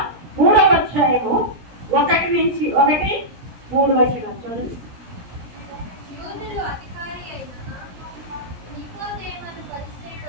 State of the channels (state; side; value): late; left; 17 ms